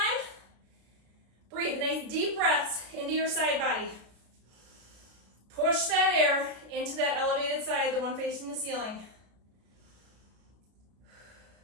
Breathe nice deep breaths into your side body. Push that air into that elevated side, the one facing the ceiling.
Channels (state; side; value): late; left; 33 ms